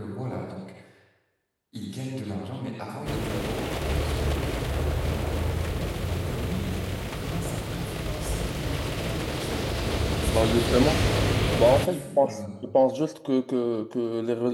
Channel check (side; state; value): both; identical; correlation 1.00